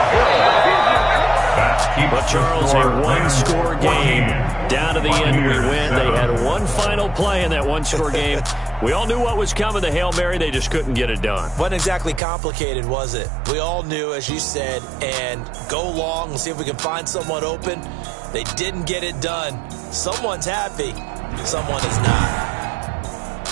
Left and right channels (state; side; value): drops out; left; at 12.2 s